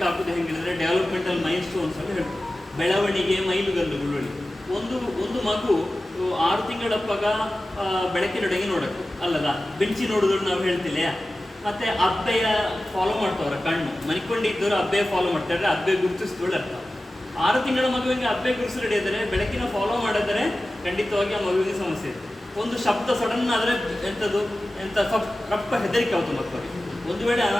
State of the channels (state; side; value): normal; both; correlation 0.95